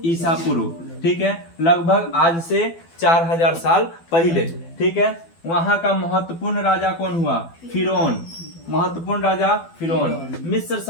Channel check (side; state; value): right; late; 12 ms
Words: ईसा पूर्व। ठीक है, लगभग आज से 4000 साल पहले। ठीक है, वहां का महत्वपूर्ण राजा कौन हुआ, फिरौन, महत्वपूर्ण राजा फिरौन। मिस्र